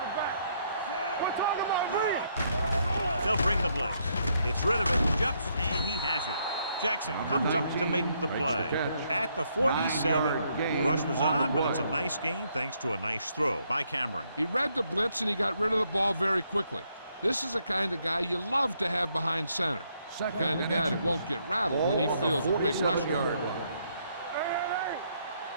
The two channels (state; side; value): inverted; both; correlation -0.73